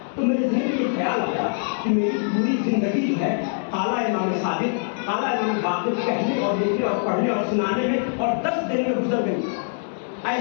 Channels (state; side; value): silent; right; 63 dB below the other